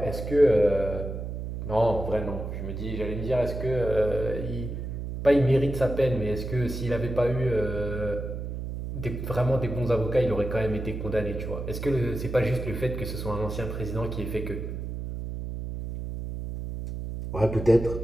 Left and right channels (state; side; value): noise; right; hum, 6 dB below the sound